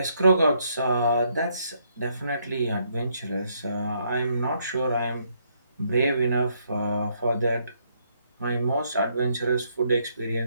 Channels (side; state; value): both; inverted; correlation -0.73